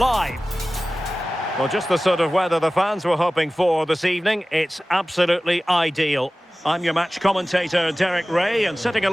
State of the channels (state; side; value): normal; both; correlation 0.97